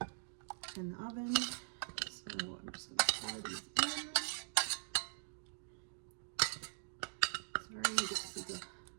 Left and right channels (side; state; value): left; silent; digital silence